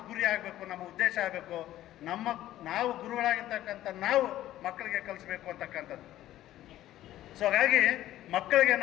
ಗುರಿ ಆಗಬೇಕು, ನಮ್ಮ ಉದ್ದೇಶ ಆಗಬೇಕು. ನಾವು ಗುರುಗಳಾಗಿರ್ತಕ್ಕಂಥ ನಾವು ಮಕ್ಕಳಿಗೆ ಕಲಿಸ್ಬೇಕು ಅಂತಕ್ಕಂಥದ್ದು. ಸೊ ಹಾಗಾಗಿ ಮಕ್ಕಳಿಗೆ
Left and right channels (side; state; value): right; quieter; 13.8 dB